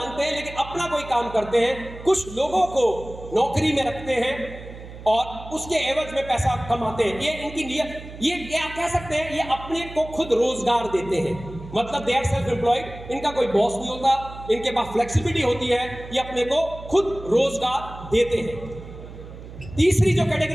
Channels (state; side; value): noise; right; hum, 14 dB below the sound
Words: हैं लेकिन अपना कोई काम करते हैं, कुछ लोगों को नौकरी में रखते हैं और उसके एवज में पैसा कमाते हैं। ये इनकी ये आप कह सकते हैं ये अपने को खुद रोजगार देते हैं, मतलब दे आर सेल्फ एम्प्लॉयड। इनका कोई बॉस नहीं होता, इनके पास फ्लेक्सिबिलिटी होती है, ये अपने को खुद रोजगार देते हैं। तीसरी जो